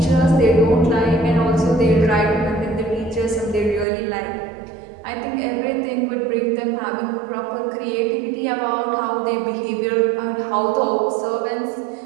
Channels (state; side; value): drops out; left; at 3.9 s